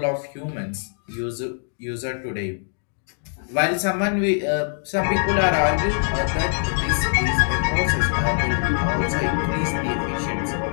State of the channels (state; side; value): silent; right; 59 dB below the other